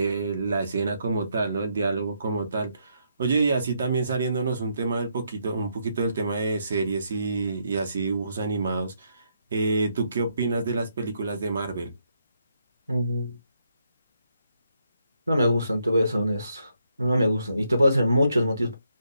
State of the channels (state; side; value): inverted; both; correlation -0.76